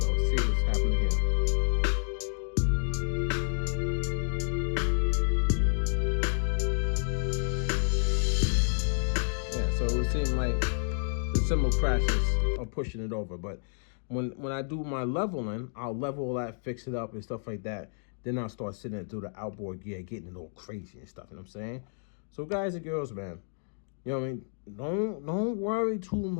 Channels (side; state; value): right; silent; digital silence